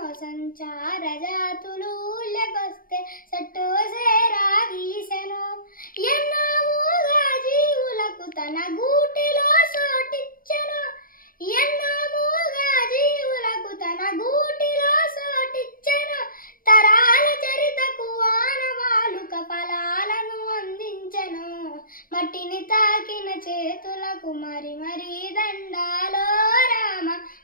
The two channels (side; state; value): right; late; 0.41 ms